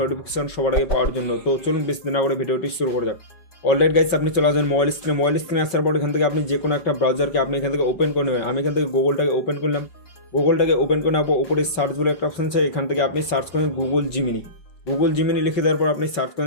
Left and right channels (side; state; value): right; late; 5.1 ms